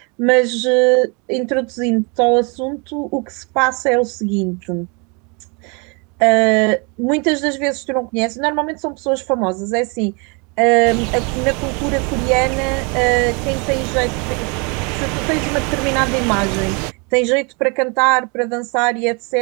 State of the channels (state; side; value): quieter; left; 32.3 dB